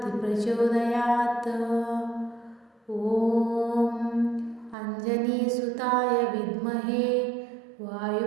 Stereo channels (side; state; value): left; drops out; at 4.8 s